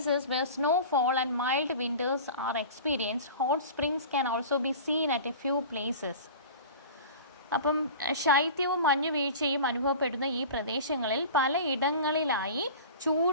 where snowfall and mild winters are experienced, hot springs can also be seen at a few places. അപ്പം ശൈത്യവും മഞ്ഞുവീഴ്ചയും അനുഭവപ്പെടുന്ന ഈ പ്രദേശങ്ങളിൽ പല ഇടങ്ങളിലായി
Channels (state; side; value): inverted; both; correlation -0.37